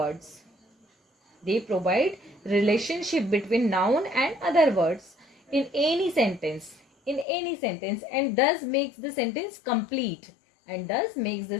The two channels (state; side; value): drops out; right; at 7.2 s